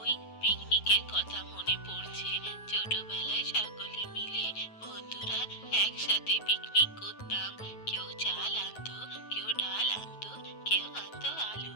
ওই পিকনিকের কথা মনে পড়ছে। ছোটবেলায় সকলে মিলে বন্ধুরা একসাথে পিকনিক করতাম। কেউ চাল আনতো, কেউ ডাল আনতো, কেউ আনতো আলু,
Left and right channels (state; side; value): late; right; 9.3 ms